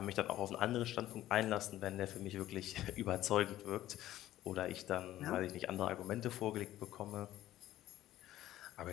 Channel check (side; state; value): right; quieter; 14.0 dB